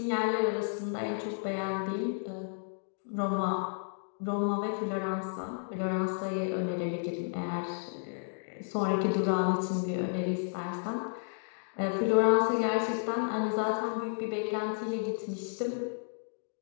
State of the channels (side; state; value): right; silent; digital silence